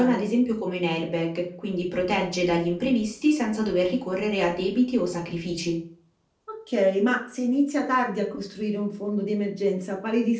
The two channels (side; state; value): both; identical; correlation 1.00